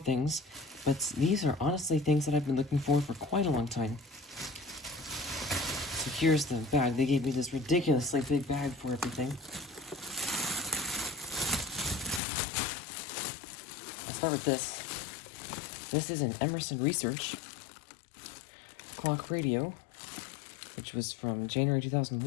but these are honestly things that I've been looking for quite a long time. So here's the bag. They gave me this ridiculously big bag for everything. I'll start with this. This is an Emerson Research clock radio, which was from January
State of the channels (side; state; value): right; drops out; at 12.2 s